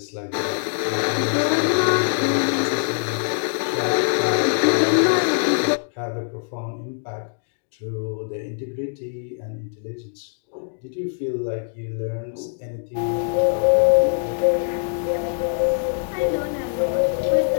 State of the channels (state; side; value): silent; right; digital silence